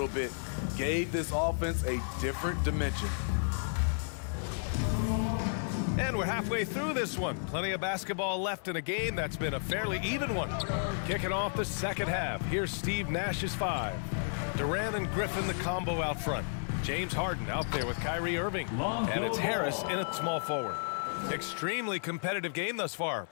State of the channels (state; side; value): silent; right; digital silence